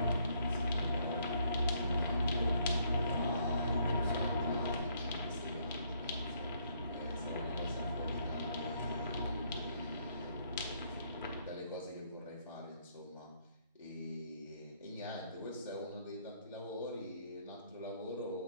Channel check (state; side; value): inverted; both; correlation -0.69